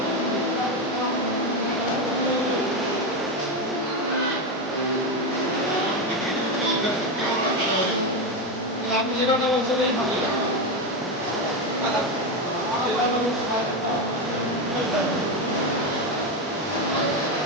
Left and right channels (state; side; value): normal; both; correlation 0.12